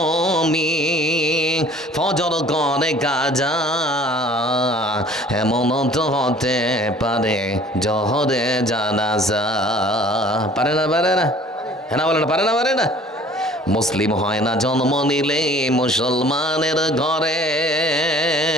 ফজর করে কাজা, এমন তো হতে পারে জহরে জানাজা। পারে না পারে না, হ্যাঁ বলে না, পারে না পারে না। মুসলিম হয় না জন্ম নিলে মুসলমানের ঘরে,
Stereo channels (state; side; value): normal; both; correlation 0.51